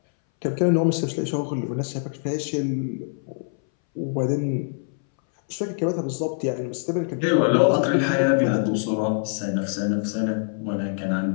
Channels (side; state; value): right; silent; 61 dB below the other